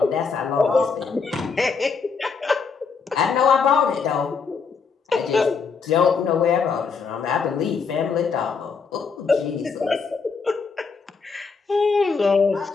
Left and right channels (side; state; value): right; quieter; 5.3 dB